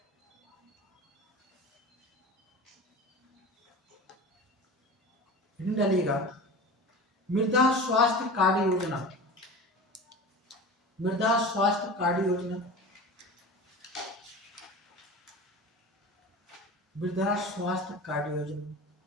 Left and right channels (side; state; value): both; normal; correlation 0.34